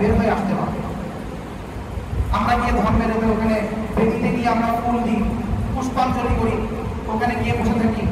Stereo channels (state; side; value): identical; both; correlation 1.00